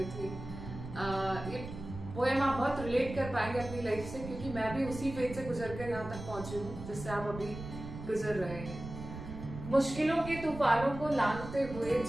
थी। ये पोएम आप बहुत रिलेट कर पाएंगे अपनी लाइफ से, क्योंकि मैं भी उसी फेज से गुजर कर यहाँ तक पहुंची हूँ जिससे आप अभी गुजर रहे हैं। मुश्किलों के तूफानों को लांघते हुए,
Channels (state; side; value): noise; right; rumble, 10 dB below the sound